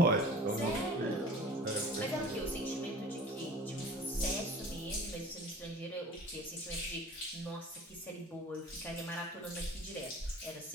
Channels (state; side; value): normal; both; correlation 0.42